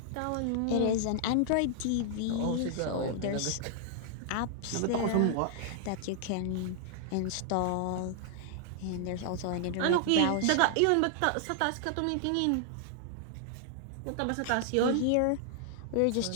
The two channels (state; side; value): different; both; correlation 0.00